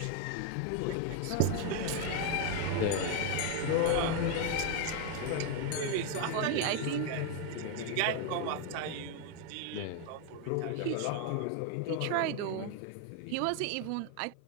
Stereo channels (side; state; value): both; different; correlation 0.01